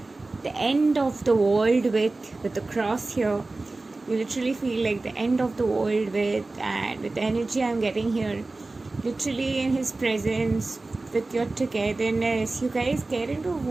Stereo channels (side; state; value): left; quieter; 3.3 dB